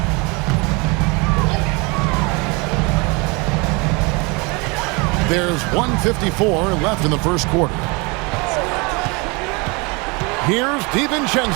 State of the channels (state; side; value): quieter; left; 28.4 dB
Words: There's 1:54 left in the first quarter. Here's